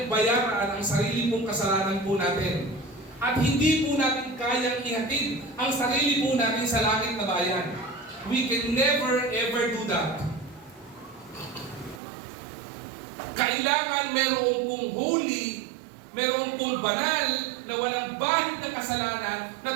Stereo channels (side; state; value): left; drops out; at 12.0 s